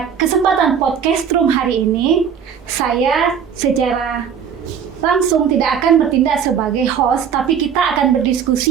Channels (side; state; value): left; quieter; 7.6 dB